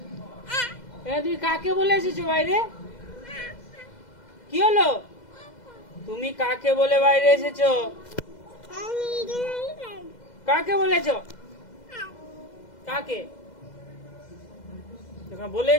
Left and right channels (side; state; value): right; late; 2.0 ms